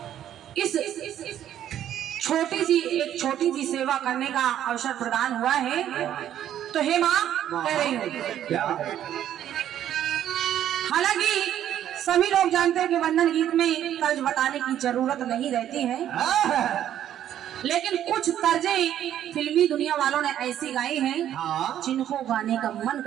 इस छोटी सी सेवा करने का अवसर प्रदान हुआ है। तो हे माँ कह रही हूँ हालांकि सभी लोग जानते हैं कि वंदन गीत में तर्ज बताने की जरूरत नहीं रहती है, लेकिन कुछ तर्जें फिल्मी दुनिया वालों ने ऐसी गाई हैं जिनको गाने का मन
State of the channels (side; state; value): left; quieter; 11.0 dB